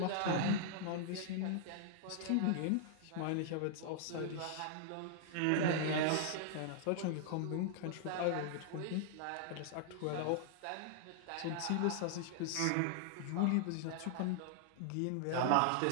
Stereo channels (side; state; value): both; different; correlation -0.01